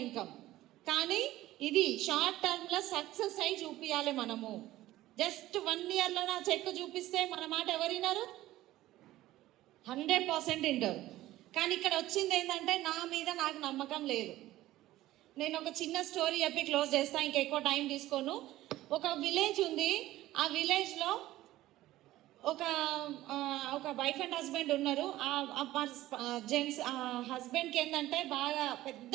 ఇన్కమ్. కానీ ఇది షార్ట్ టర్మ్లో సక్సెస్ అయి చూపించాలి మనము. జస్ట్ 1 yearలో నా చెక్ చూపిస్తే మన మాట ఎవరు విన్నారు? 100% వింటారు. కానీ ఇక్కడ వచ్చింది ఏంటంటే నా మీద నాకు నమ్మకం లేదు. నేను ఒక చిన్న స్టోరీ చెప్పి క్లోజ్ చేస్తాను, ఇంకెక్కువ టైం తీసుకోను. ఒక విలేజ్ ఉంది. ఆ విలేజ్లో ఒక వైఫ్ అండ్ హస్బెండ్ ఉన్నారు. జెంట్స్ హస్బెండ్కి ఏంటంటే బాగా పెద్ద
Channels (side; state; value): left; quieter; 15.6 dB